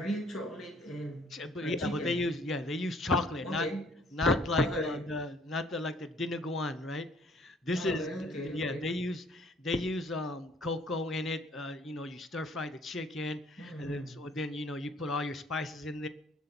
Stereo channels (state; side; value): normal; both; correlation 0.59